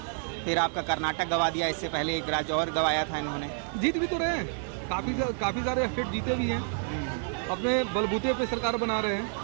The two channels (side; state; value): left; silent; 56 dB below the other